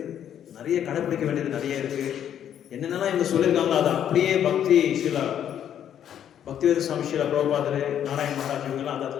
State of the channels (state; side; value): quieter; right; 9.8 dB